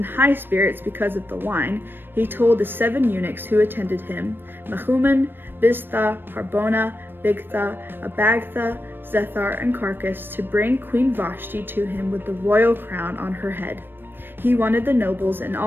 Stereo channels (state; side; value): late; left; 0.097 ms